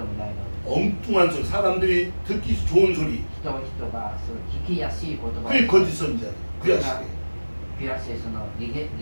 もないのに、 엉뚱한 소리, 사람들이 듣기 좋은 소리, 人がその聞きやすい言葉 그게 거짓 선지자, 그야 시대. ピラセスの理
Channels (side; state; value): both; inverted; correlation -1.00